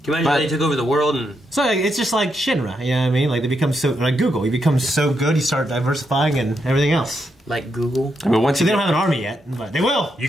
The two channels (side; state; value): both; normal; correlation 0.81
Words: Can you imagine they took over the world and... So like, it's just like Shinra, you know what I mean? Like they become so, like Google, you become so good, you start diversifying and everything else. Like Google? I mean, once they don't have an army yet, but they will. You